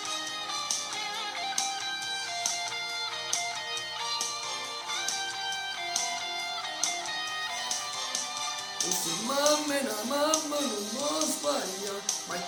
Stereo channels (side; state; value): both; identical; correlation 1.00